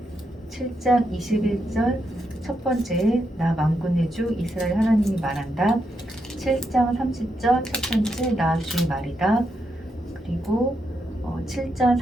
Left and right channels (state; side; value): normal; both; correlation 0.82